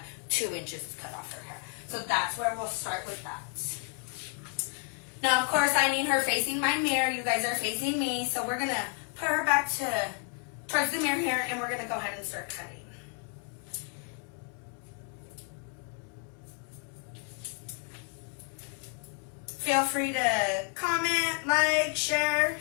2 inches cut off her hair. So that's where we'll start with that. Now, of course, I need her facing my mirror. You guys are facing me. So we're going to put her back towards the mirror here, and we're going to go ahead and start cutting. Feel free to comment, like, share.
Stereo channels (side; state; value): right; quieter; 36.7 dB